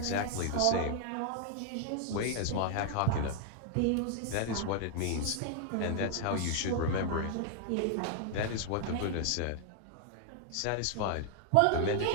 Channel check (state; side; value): different; both; correlation 0.00